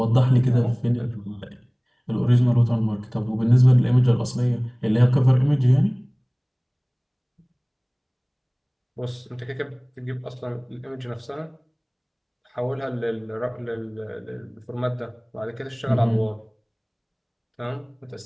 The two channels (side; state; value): both; identical; correlation 1.00